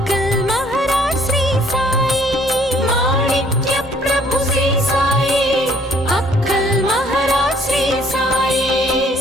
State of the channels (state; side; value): normal; both; correlation 0.61